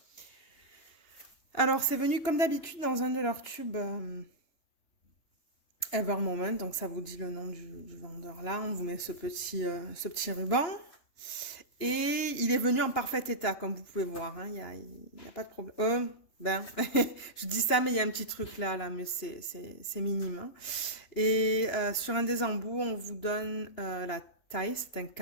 Alors, c'est venu comme d'habitude dans un de leurs tubes Ever Moment. Donc, ça vous dit le nom du vendeur là. On vous met ce petit ruban. Et il est venu en parfait état, comme vous pouvez voir. Hein. Il y a pas de problème. Je dis ça, mais il y a un petit truc là, mais c'est minime. Hein. Et sur un des embouts, on vous donne la taille, c'est un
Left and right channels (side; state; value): right; late; 2.9 ms